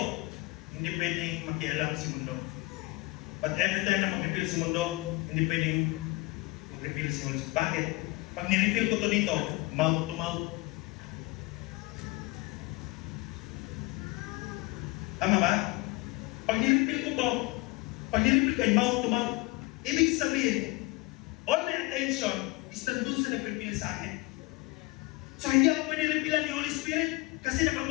hindi pwedeng makialam si mundo. But every time na mag-refill si mundo, hindi pwedeng mag-refill si Holy Spirit. Bakit? Pag nirefill ko to dito, mouth to mouth. Tama ba? Pag niripil ko to, pag niripil ko, mouth to mouth, ibig sabihin, all my attention is nandun sa nag-reveal sa akin. So hindi ako pwede revealan ni Holy Spirit kasi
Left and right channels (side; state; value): right; quieter; 22.6 dB